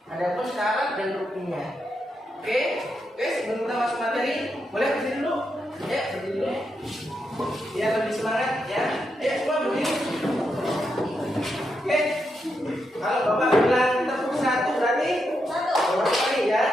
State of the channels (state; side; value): normal; both; correlation 0.83